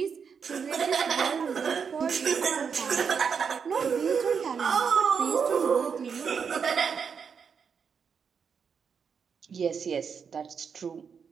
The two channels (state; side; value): quieter; left; 6.4 dB